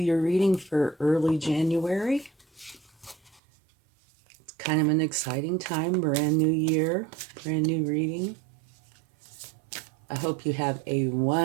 reading for early January. It's kind of an exciting time, brand new year, brand new reading. I hope you have a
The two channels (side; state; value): left; drops out; at 3.4 s